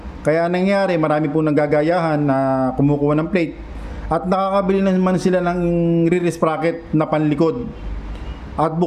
Kaya nangyari, marami pong nanggagayahan na kumukuha ng plate. At nakakabili naman sila ng rear sprocket na panlikod. At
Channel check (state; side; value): identical; both; correlation 1.00